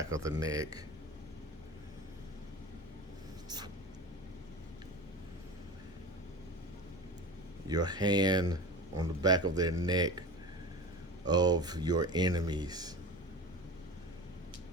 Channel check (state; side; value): normal; both; correlation 0.32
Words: of the neck. Your hand on the back of their neck of your enemies.